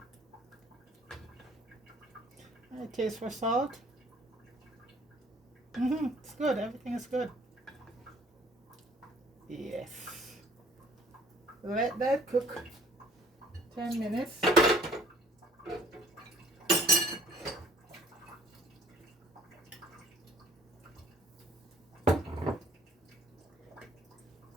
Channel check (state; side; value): normal; both; correlation 0.56